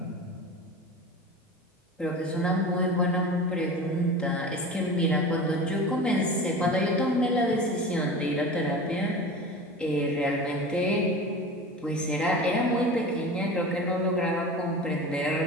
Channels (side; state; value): both; normal; correlation 0.33